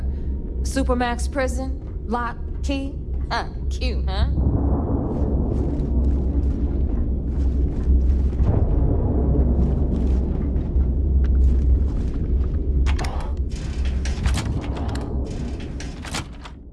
Supermax prison, Lock, Key. Cute, huh?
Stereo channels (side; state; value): both; identical; correlation 1.00